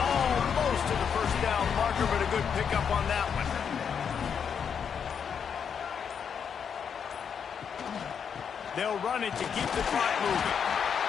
to the first down marker, but a good pickup on that one. They'll run it to keep the clock moving.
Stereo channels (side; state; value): right; quieter; 7.2 dB